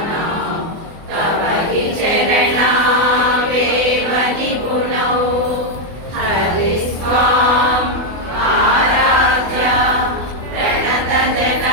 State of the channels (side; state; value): left; late; 24 ms